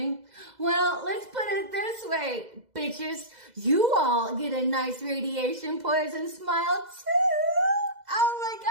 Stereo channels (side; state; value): left; late; 2.0 ms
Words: well, let's put it this way, bitches. You all get a nice radiation poison smile too. Oh my